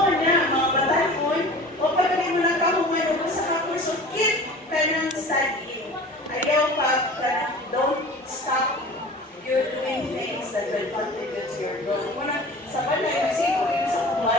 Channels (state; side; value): normal; both; correlation 0.40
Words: bataan, o pagkali mo na kahuman o sa kakurso, keep ka ng studying. Ayaw pa, don't stop. You're doing things that will contribute to your growth. Sa balay, nasipo yun sa